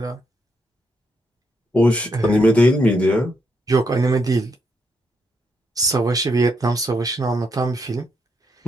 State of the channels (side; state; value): both; normal; correlation 0.78